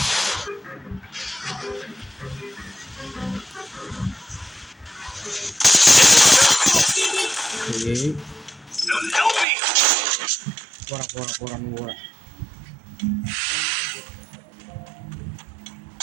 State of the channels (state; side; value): drops out; left; at 9.5 s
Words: పోరా నువ్వు కూడా.